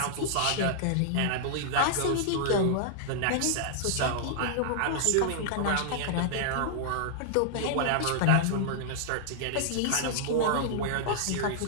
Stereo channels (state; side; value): different; both; correlation -0.01